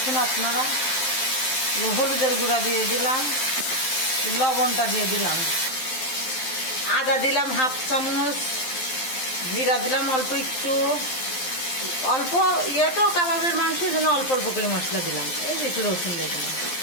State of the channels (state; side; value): late; right; 12 ms